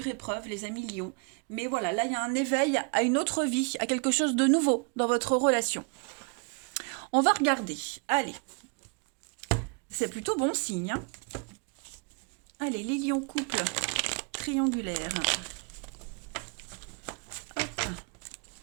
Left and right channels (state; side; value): quieter; left; 35.0 dB